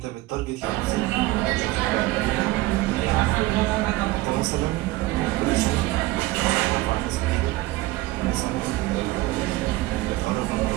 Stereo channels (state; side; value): quieter; left; 18.9 dB